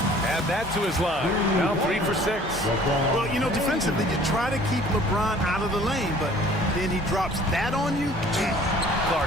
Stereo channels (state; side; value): normal; both; correlation 0.52